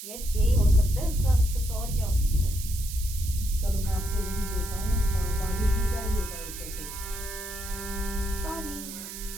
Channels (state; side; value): noise; right; hiss, 10 dB below the sound